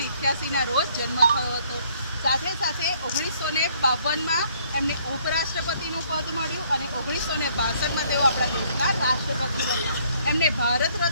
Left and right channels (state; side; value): inverted; both; correlation -0.64